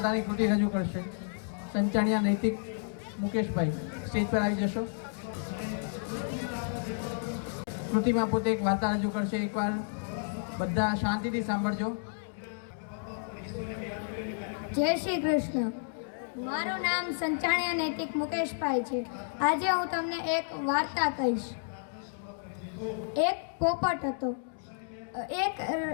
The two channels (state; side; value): silent; right; digital silence